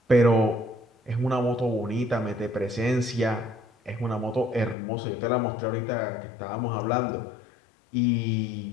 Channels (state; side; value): drops out; right; at 4.8 s